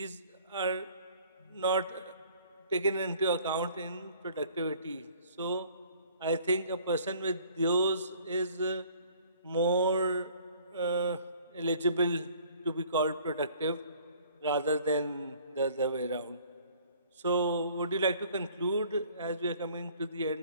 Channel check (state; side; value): inverted; both; correlation -0.55